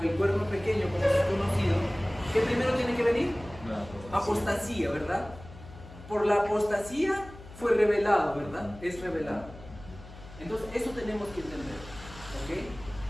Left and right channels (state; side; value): noise; left; hum, 17 dB below the sound